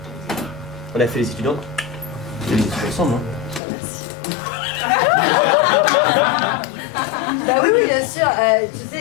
On a fait les études. Hein. On a fait les études ensemble. Hein. Bah oui, oui, bien sûr. Tu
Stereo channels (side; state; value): right; drops out; at 3.6 s